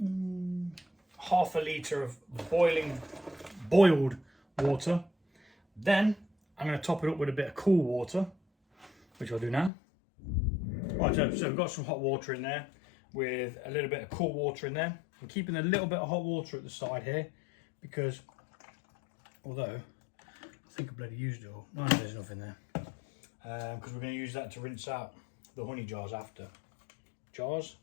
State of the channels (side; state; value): right; drops out; at 9.7 s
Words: half a litre of boiled water. Then I'm going to top it up with a bit of cool water, which I'll do now. Right, so we've got some hot water in there with a little bit of cool water in there. I'm keeping a little bit of hot water at the side here because, although I think I bloody used it all, no, there's enough in there, because we're going to use that to rinse out the honey jars after. Jars,